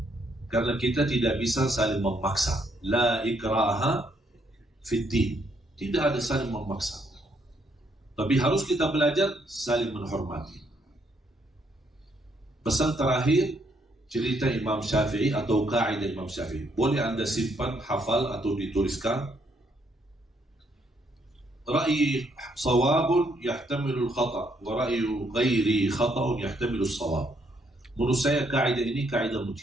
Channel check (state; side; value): normal; both; correlation 0.72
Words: Karena kita tidak bisa saling memaksa. La ikraha fiddin. Tidak ada saling memaksa. Tapi harus kita belajar saling menghormati. Pesan terakhir, cerita Imam Syafi'i atau kaidah Imam Syafi'i. Boleh anda simpan, hafal atau dituliskan. Ra'yi sawabun yahtamilul khata' wa ra'yu ghairi khata'un yahtamilus sawab. Menurut saya kaidah ini kaidah